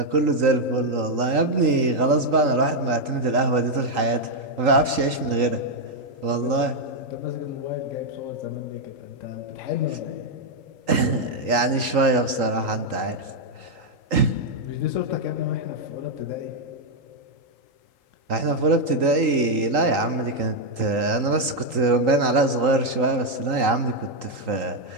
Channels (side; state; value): left; late; 3.8 ms